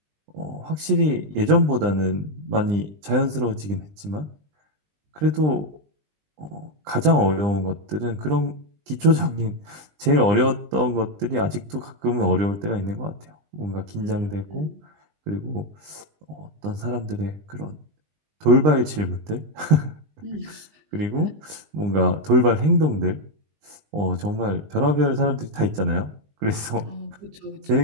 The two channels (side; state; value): left; late; 20 ms